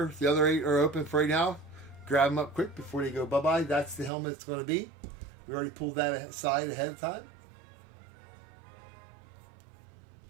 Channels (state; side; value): drops out; left; at 4.1 s